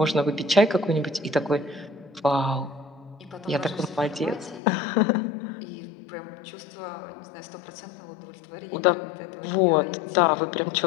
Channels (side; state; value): right; drops out; at 4.6 s